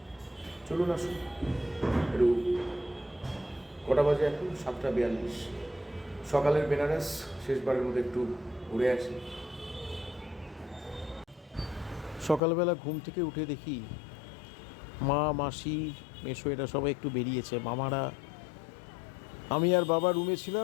চলুন আসুন। একটু কটা বাজে এখন? 7:42। সকালের বেনারস শেষবারের মধ্যে একটু ঘুরে আসি। সকালবেলা ঘুম থেকে উঠে দেখি মা, মাসি, মেসো এরা সবাই একটু বেরিয়েছে। মামারা, আমি আর বাবা রুমে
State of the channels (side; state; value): right; drops out; at 12.4 s